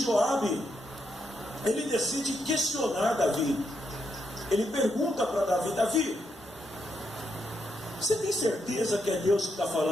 ele decide questionar Davi. Ele pergunta para Davi: Davi, você tem certeza que é Deus que está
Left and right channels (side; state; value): both; normal; correlation 0.80